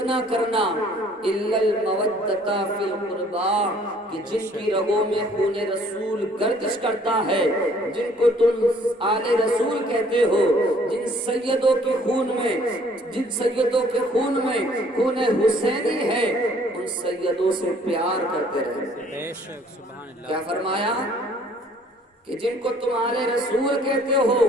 کرنا الا المودۃ فی القربى، کہ جن کی رگوں میں خون رسول گردش کرتا ہے، جن کو تم آل رسول کہتے ہو، جن سیدوں کے خون میں خون حسینی ہے، ان سیدوں سے پیار کرتے رہے۔ کیا فرمایا کہ جن کو تم آل رسول کہتے ہو،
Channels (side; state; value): both; normal; correlation 0.59